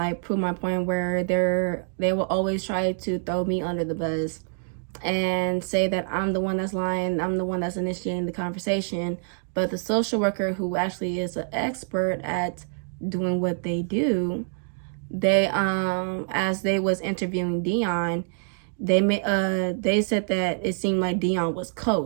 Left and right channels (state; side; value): silent; left; 61 dB below the other